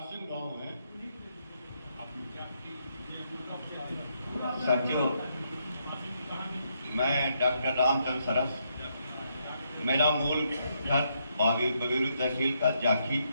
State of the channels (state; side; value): inverted; both; correlation -0.77